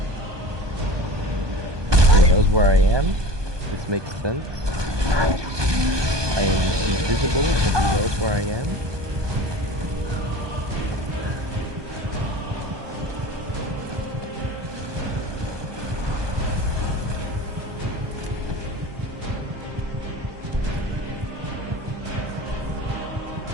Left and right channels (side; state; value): left; late; 1.2 ms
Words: He knows where I am. This makes sense. I am invisible, but he knows where I am.